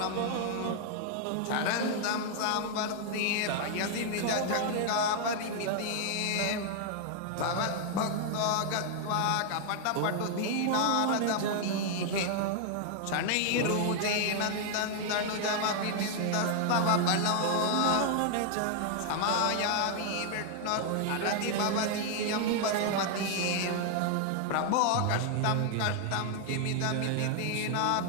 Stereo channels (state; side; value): different; both; correlation 0.00